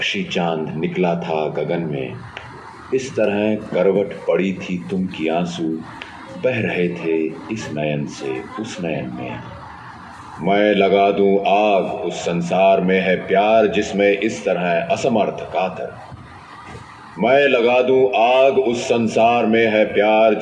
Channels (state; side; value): identical; both; correlation 1.00